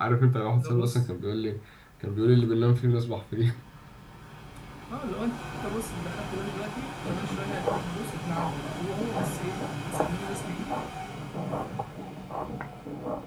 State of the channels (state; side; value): identical; both; correlation 1.00